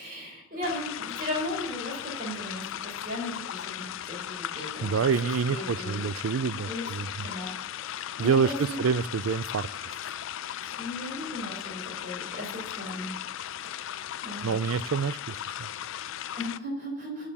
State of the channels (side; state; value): both; normal; correlation 0.10